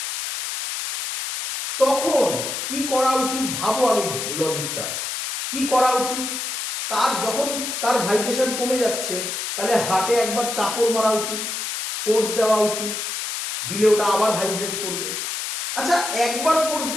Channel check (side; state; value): left; noise; hiss, 4 dB below the sound